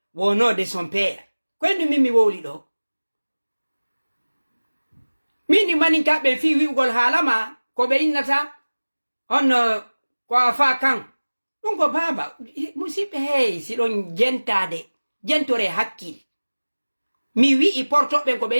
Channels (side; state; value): both; inverted; correlation -1.00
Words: no de son père ko en mimi wowli ɗo mini maninka ɓe fi wi'ugol haalama ko ɓe innata on ko afa kan ɗum ko baba musidɓe hey siɗon jentore hakkil mi wi'i portoɓen ko ɓe